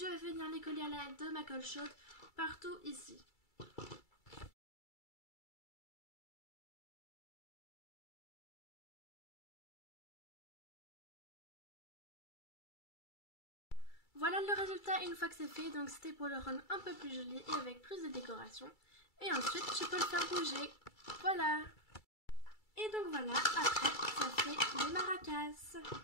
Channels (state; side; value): late; right; 2.3 ms